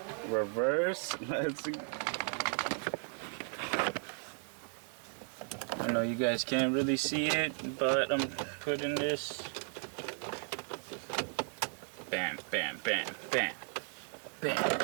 Reverse. Let's go. I know you guys can't really see it, but I'm putting this. Bam, bam, bam, bam, bam.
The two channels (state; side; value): silent; left; 54 dB below the other